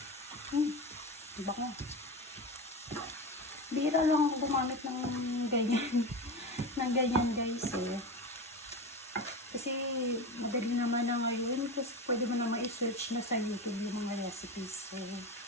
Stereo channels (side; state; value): both; normal; correlation 0.23